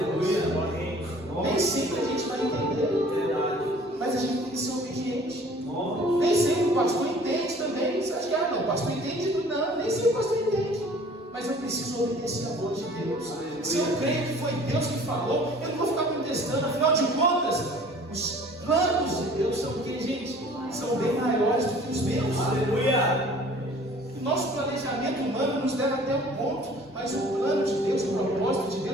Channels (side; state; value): both; normal; correlation 0.50